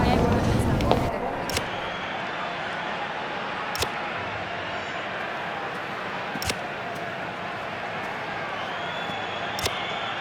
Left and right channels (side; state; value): both; identical; correlation 1.00